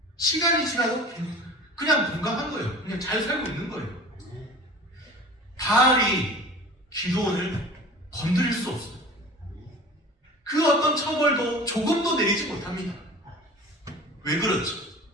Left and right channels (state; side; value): normal; both; correlation 0.40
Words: 시간이 지나도 그냥 건강한 거예요. 그냥 잘 살고 있는 거예요. 바알이 기드온을 건드릴 수 없어요. 그 어떤 처벌도 조금도 내리지 못합니다. 왜 그렇죠?